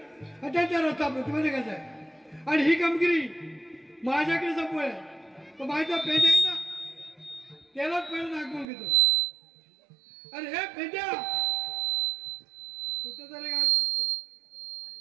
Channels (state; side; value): drops out; left; at 8.7 s